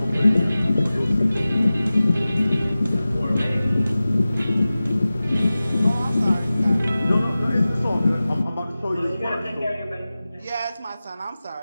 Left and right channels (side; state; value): both; inverted; correlation -0.96